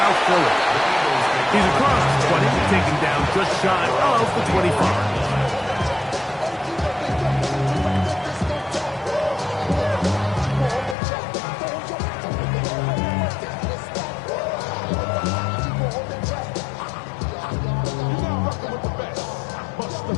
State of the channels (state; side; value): drops out; right; at 11.0 s